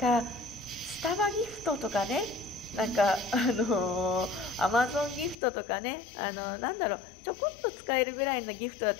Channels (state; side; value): drops out; right; at 5.4 s